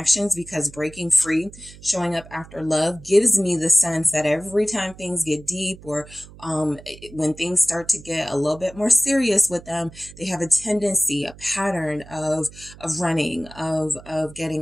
because breaking free, showing up after love, gives me the sense that every time things get deep, or when things start to get a little bit more serious with them, they have a tendency, a pattern of running, of getting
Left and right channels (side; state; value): right; noise; hum, 19 dB below the sound